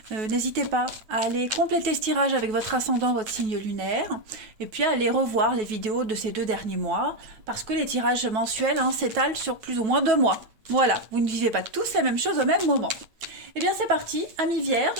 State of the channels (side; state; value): left; late; 9.3 ms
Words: N'hésitez pas à aller compléter ce tirage avec votre ascendant, votre signe lunaire, et puis à aller revoir les vidéos de ces 2 derniers mois, parce que les tirages mensuels s'étalent sur plus ou moins 2 mois. Voilà, vous ne vivez pas tous la même chose au même moment. Eh bien c'est parti, amis